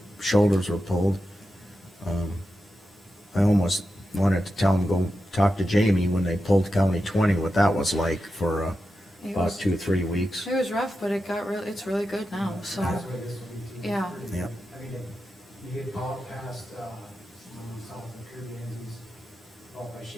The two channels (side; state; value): both; normal; correlation 0.90